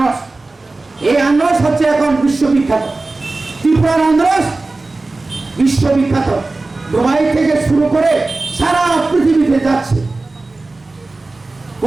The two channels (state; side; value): quieter; left; 3.3 dB